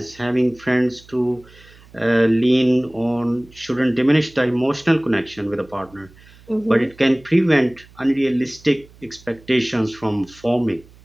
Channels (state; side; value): noise; right; hum, 25 dB below the sound